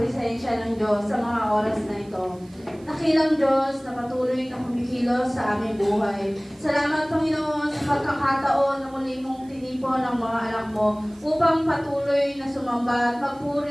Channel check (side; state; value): right; noise; hiss, 28 dB below the sound